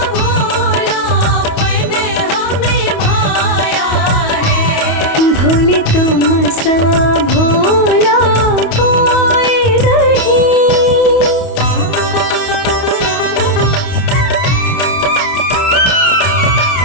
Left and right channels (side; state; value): right; late; 28 ms